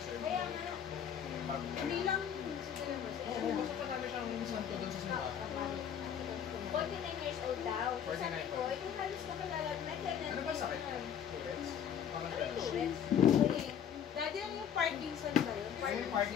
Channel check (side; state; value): right; quieter; 8.7 dB